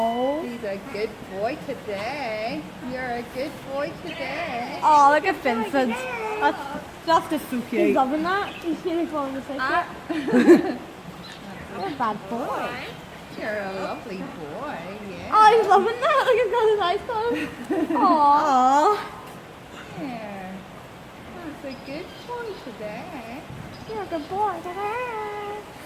He's a good boy today. You're a good boy today. Oh, look at Vincent. That's just so He's cute. loving that. He's really falling asleep. You're a bad boy. You're a lovely boy, yeah. Oh, he's loving that. Look, he's got his eyes closed. Aww. Aww. Yeah. That's a good boy today. You're a good boy today.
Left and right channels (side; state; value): both; identical; correlation 1.00